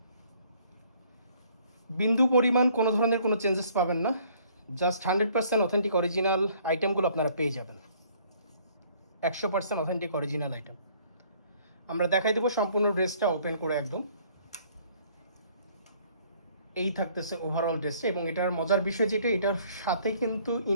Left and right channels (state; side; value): inverted; both; correlation -0.60